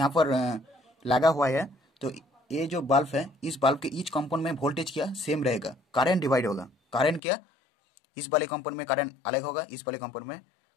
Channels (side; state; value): right; drops out; at 7.2 s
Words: पर लगा हुआ है, तो ये जो बल्ब है इस बल्ब के ईच कंपोनेंट में वोल्टेज क्या सेम रहेगा। करंट डिवाइड होगा। करंट क्या? इस वाले कंपोनेंट में करंट अलग होगा, इस वाले